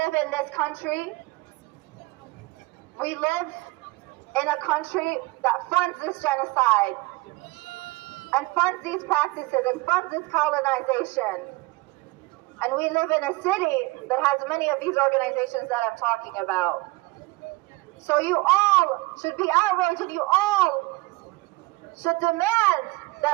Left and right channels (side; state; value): left; quieter; 23.0 dB